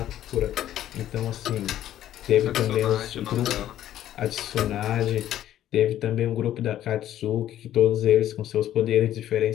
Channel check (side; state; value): right; quieter; 12.1 dB